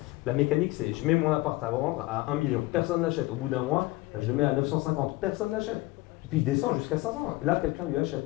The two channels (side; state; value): right; quieter; 20.3 dB